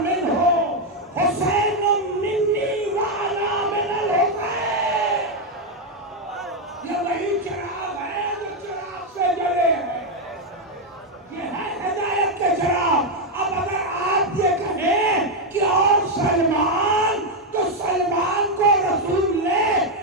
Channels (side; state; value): both; normal; correlation 0.03